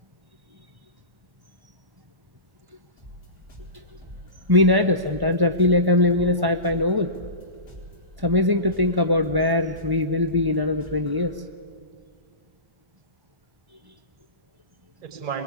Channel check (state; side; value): late; left; 1.1 ms